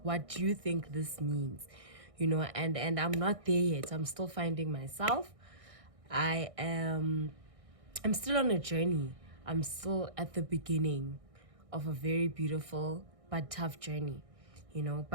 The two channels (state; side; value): late; left; 1.6 ms